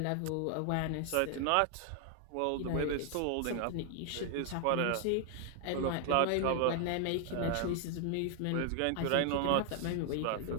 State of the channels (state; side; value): different; both; correlation 0.00